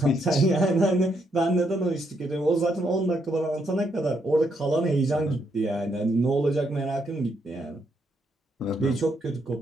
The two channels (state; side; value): normal; both; correlation 0.76